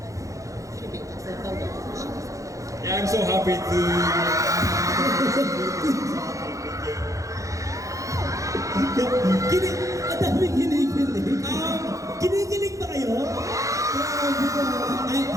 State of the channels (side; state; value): left; late; 0.16 ms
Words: Yeah, I'm so happy to. Ang dami kinikilig. Kinikilig ba kayo?